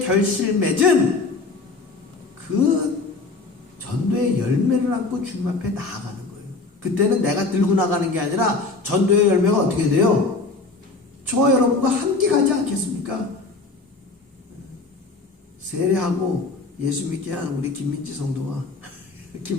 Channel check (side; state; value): right; quieter; 3.8 dB